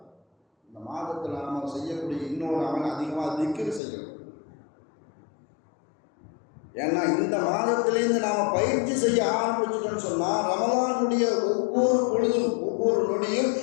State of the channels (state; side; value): drops out; right; at 3.8 s